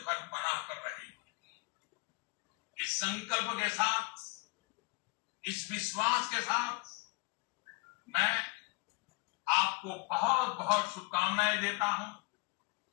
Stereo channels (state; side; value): quieter; right; 27.3 dB